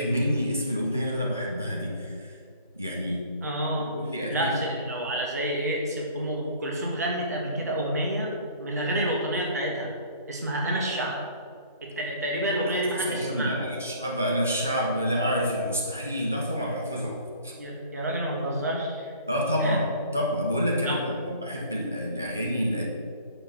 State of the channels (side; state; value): both; inverted; correlation -0.50